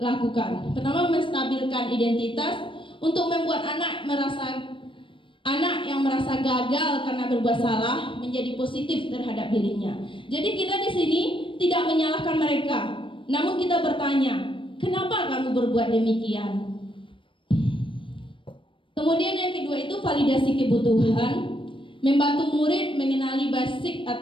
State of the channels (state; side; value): late; right; 0.25 ms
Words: Pertama, menstabilkan identitas untuk membuat anak yang merasa gagal karena berbuat salah menjadi positif terhadap dirinya. Jadi kita di sini tidak menyalahkan mereka, namun kita bertanya, kenapa kamu berbuat demikian? Kemudian yang kedua itu validasi kebutuhan, membantu murid mengenali basic